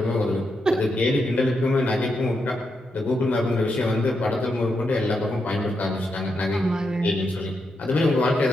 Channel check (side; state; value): both; normal; correlation 0.83